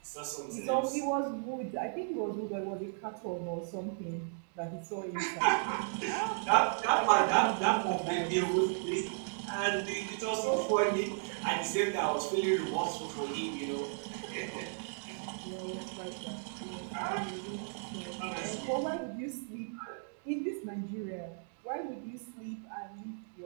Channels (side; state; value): left; silent; digital silence